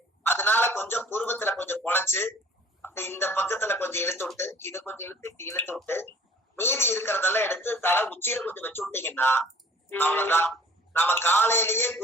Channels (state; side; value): normal; both; correlation 0.50